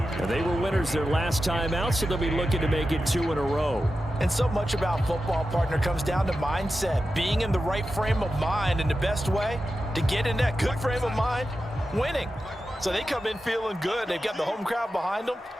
And they were winners their last time out, so they'll be looking to make it 2 in a row. And so much about football, partner, comes down to mindset. Being in the right frame of mind, and the best way to get in that good frame of mind, winning. So they come in feeling good. They've got the home crowd behind them.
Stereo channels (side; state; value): both; normal; correlation 0.91